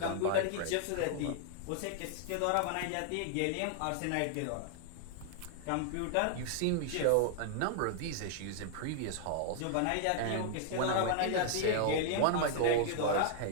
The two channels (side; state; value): both; different; correlation 0.00